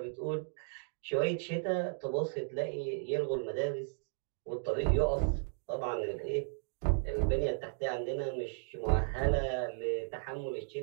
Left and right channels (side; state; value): left; silent; digital silence